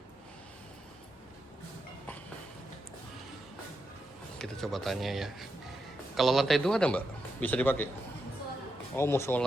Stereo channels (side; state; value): both; normal; correlation 0.85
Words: Kita coba tanya ya. Kalau lantai 2 ada mbak? Bisa dipakai? Oh